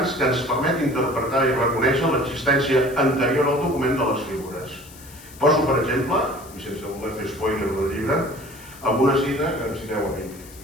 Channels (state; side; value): noise; left; hiss, 20 dB below the sound